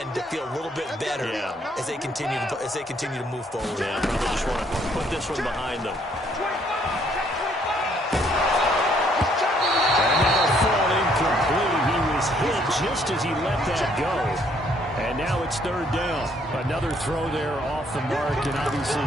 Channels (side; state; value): both; normal; correlation 0.66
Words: to feel a little bit better as they continue to move forward. Yeah, probably just want to put this one behind them. And that'll fall incomplete. He was hit just as he let that go. And now it's third down. Another throw there off the mark, and obviously